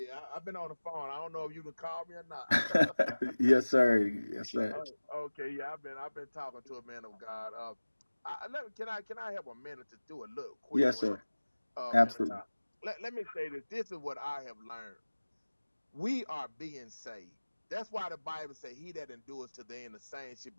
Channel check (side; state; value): both; inverted; correlation -1.00